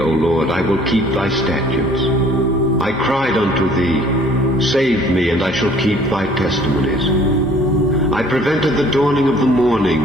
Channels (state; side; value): normal; both; correlation 0.55